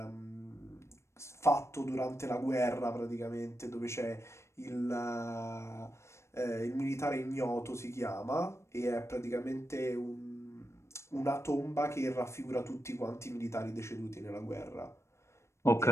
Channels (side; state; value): right; late; 0.13 ms